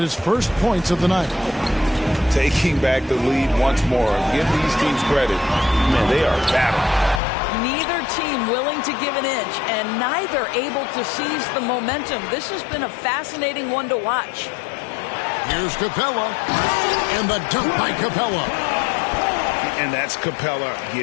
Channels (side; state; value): right; drops out; at 7.2 s